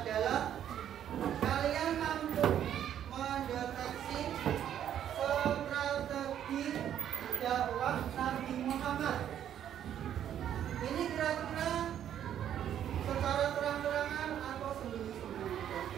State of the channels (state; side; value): quieter; left; 10.2 dB